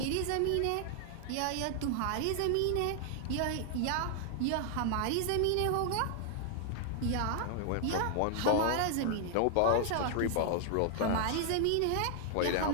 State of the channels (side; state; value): both; different; correlation 0.00